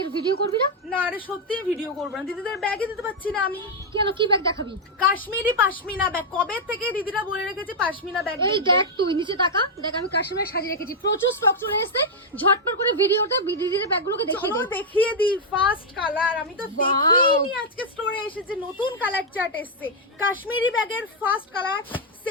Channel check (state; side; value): normal; both; correlation -0.02